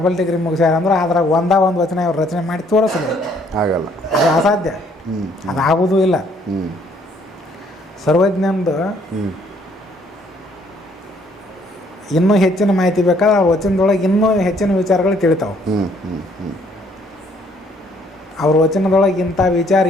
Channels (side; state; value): both; normal; correlation 0.65